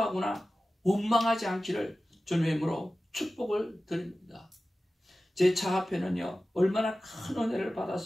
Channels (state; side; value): normal; both; correlation 0.95